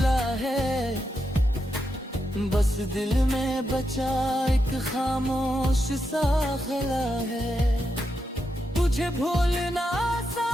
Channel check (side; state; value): both; normal; correlation 0.85